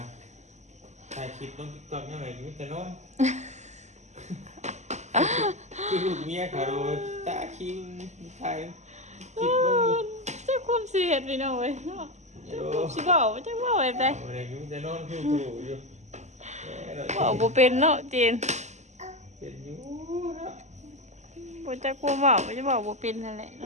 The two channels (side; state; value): left; late; 0.33 ms